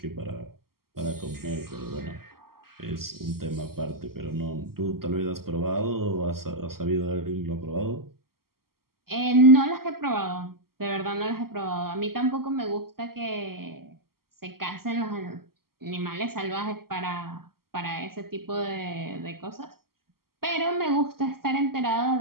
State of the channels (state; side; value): late; left; 0.93 ms